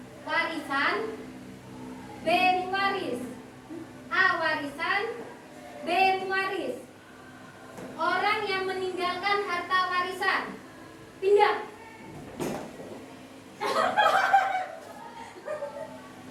warisan, B waris. A warisan, B waris. Orang yang meninggalkan harta warisan pindah.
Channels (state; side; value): identical; both; correlation 1.00